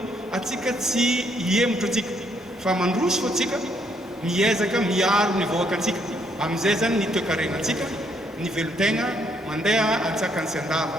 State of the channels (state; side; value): normal; both; correlation 0.71